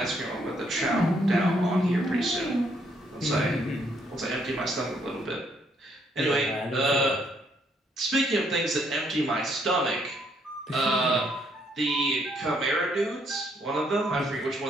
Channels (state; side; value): normal; both; correlation 0.70